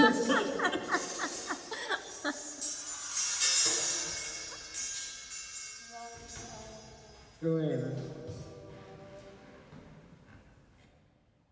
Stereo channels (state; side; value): identical; both; correlation 1.00